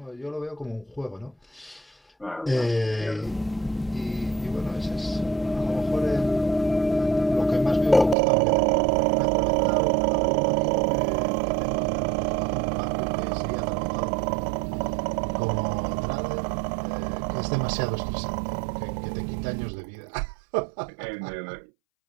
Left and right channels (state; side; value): drops out; left; at 8.2 s